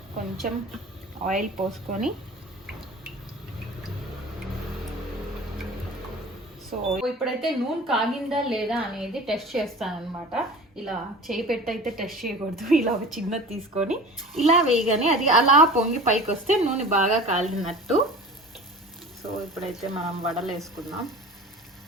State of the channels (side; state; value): both; normal; correlation 0.39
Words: కొంచెం ఆయిల్ పోసుకొని, సో ఇప్పుడైతే నూనె కాగిందా లేదా అనేది టెస్ట్ చేస్తాను అనమాట. ఇలా చేయి పెట్టి అయితే టెస్ట్ చేయకూడదు. ఇలా ఒక చిన్నది తీసుకొని ఇలా వేయగానే అది అలా పొంగి పైకి వస్తే నూనె బాగా కాలినట్టు. సో ఇప్పుడైతే మనం వడలు వేసుకుందాం.